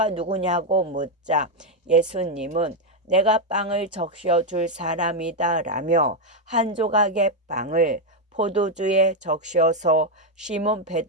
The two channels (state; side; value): normal; both; correlation 0.02